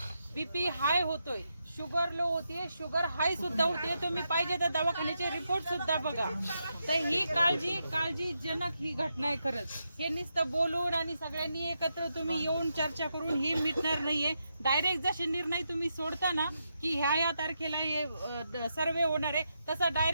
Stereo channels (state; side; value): inverted; both; correlation -0.84